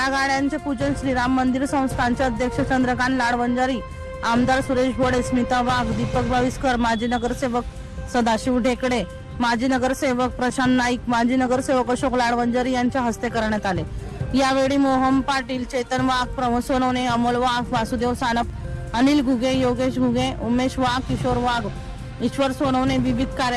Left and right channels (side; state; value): both; identical; correlation 1.00